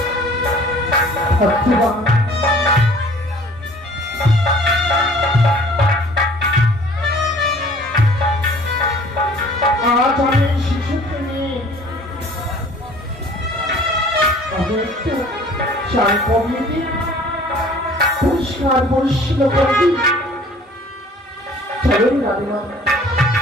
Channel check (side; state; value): both; normal; correlation 0.51